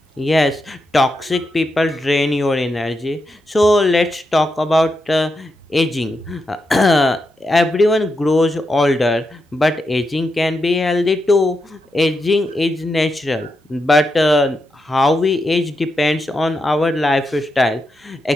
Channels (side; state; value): both; normal; correlation 0.85